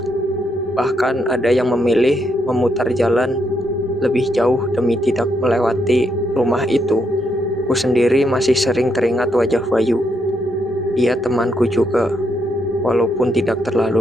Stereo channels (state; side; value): normal; both; correlation 0.77